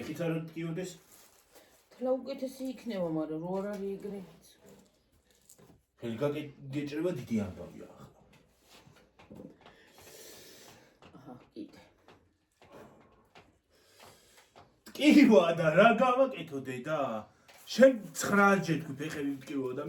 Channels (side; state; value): both; identical; correlation 1.00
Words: არ ტკიოდეს. თლა უკეთესი იქნება, მაგრამ რო არ არის ეგრე. ხელი გაგეჭრება დიდი ამბავია ახლა. აჰა, კიდე. ტკივა და რა გავაკეთო დედა? შენ 9 ჯერ თქვი ფეხები მტკივა და